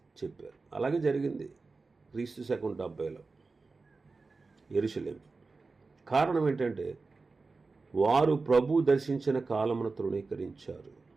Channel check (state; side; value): quieter; left; 4.0 dB